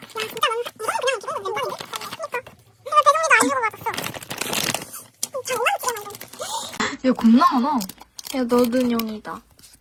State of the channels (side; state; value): both; identical; correlation 1.00